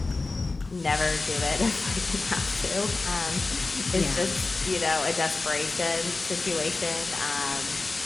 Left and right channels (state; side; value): quieter; right; 3.5 dB